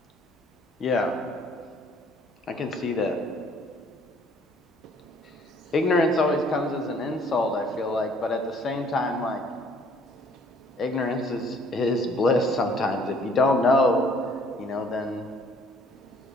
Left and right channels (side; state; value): both; normal; correlation 0.59